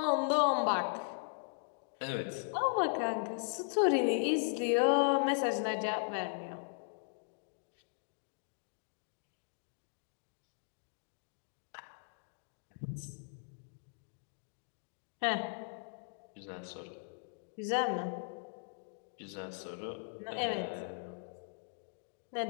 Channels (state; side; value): silent; right; digital silence